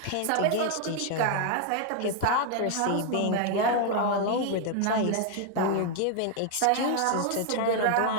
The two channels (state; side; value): different; both; correlation 0.00